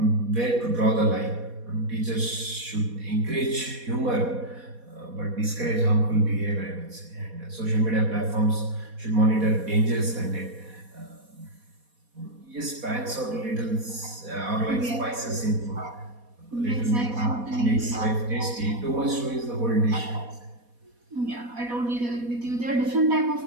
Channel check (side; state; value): left; late; 4.2 ms